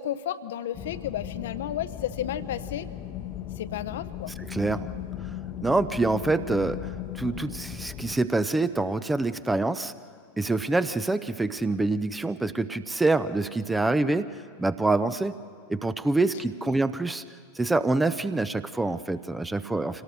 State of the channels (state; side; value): normal; both; correlation 0.78